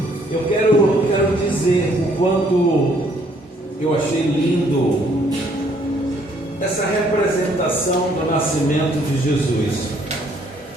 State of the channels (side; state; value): both; normal; correlation 0.65